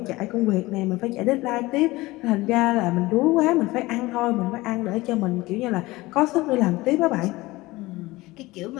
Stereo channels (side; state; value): right; quieter; 20.0 dB